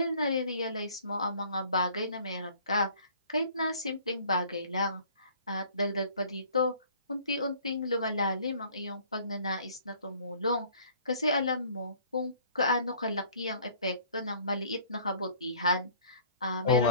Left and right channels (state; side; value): inverted; both; correlation -0.54